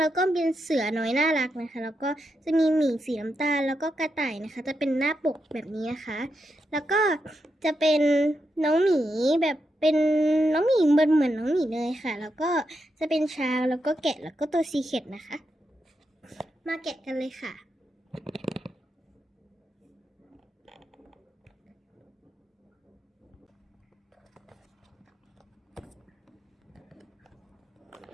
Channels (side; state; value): both; normal; correlation 0.84